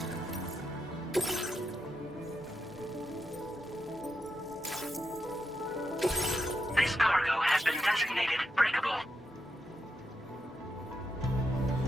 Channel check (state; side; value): normal; both; correlation 0.85